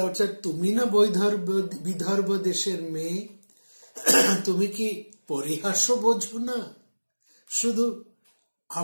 অর্থাৎ তুমি না বিদর্ভ দেশের মেয়ে, তুমি কি পরিহাস্য বোঝো না? শুধু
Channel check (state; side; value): inverted; both; correlation -1.00